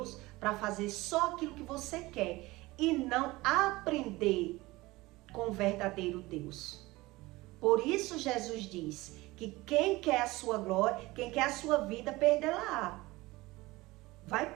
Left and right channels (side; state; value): left; quieter; 20.4 dB